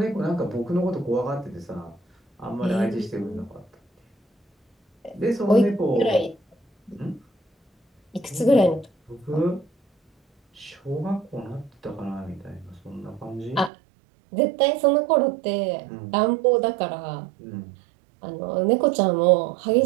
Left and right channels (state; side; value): drops out; left; at 13.7 s